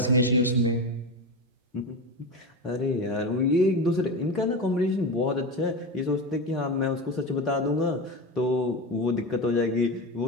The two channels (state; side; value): normal; both; correlation 0.20